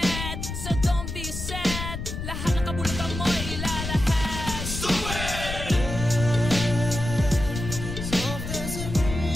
so don't be sad. Lahat ng kabulutan mo ilalahad. Stupid! Stupid!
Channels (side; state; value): left; noise; rumble, 6 dB below the sound